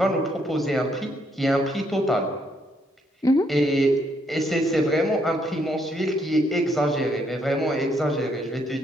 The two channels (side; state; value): both; normal; correlation 0.73